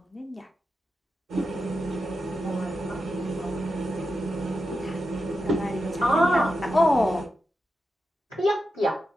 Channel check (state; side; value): normal; both; correlation 0.89